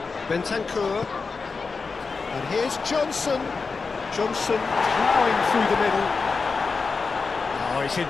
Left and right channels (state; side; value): quieter; right; 4.6 dB